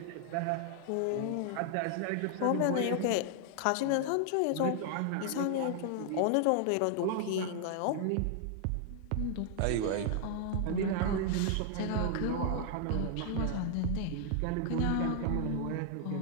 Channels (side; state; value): both; different; correlation 0.00